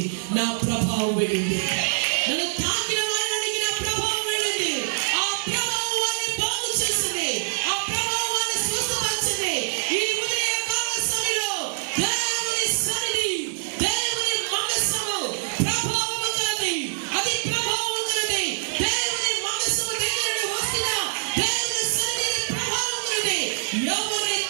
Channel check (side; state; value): left; silent; digital silence